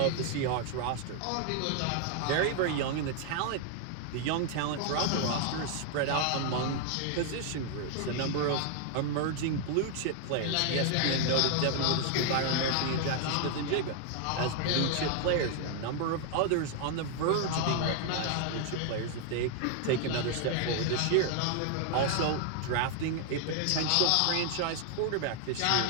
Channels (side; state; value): both; different; correlation 0.00